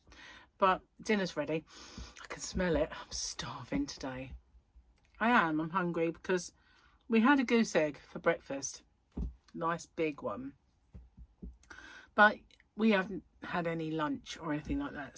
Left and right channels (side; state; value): both; identical; correlation 1.00